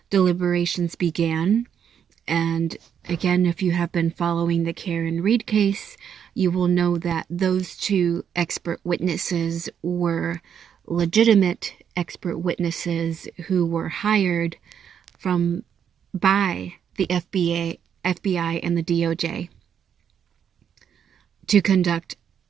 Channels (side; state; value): left; quieter; 8.3 dB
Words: deliberations began. And again, if you have been following the Karen Reed case, you will know that those two expert witnesses were legitimate expert witnesses who were hired by the FBI and the DOJ to conduct